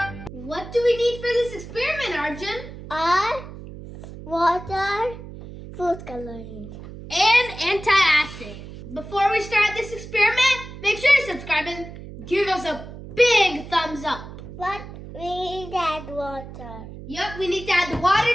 What do we need for this experiment, Arjun? Water, food coloring. And antacid. Before we start this experiment, make sure to subscribe and give us a big thumbs up. But we need to add water. Yep, we need to add the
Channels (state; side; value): noise; right; hum, 13 dB below the sound